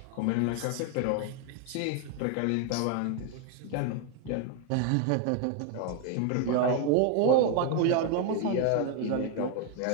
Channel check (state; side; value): different; both; correlation 0.01